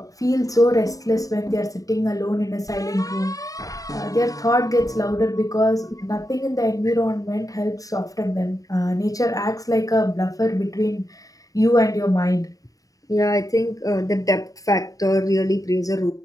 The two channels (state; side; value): late; right; 0.17 ms